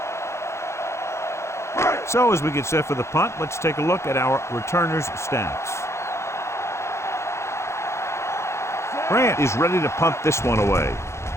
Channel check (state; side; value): late; right; 0.13 ms